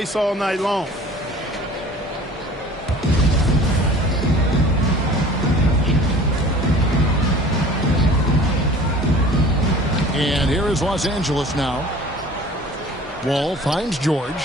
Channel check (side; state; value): both; normal; correlation 0.45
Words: all night long. And here is Los Angeles now. Wall finds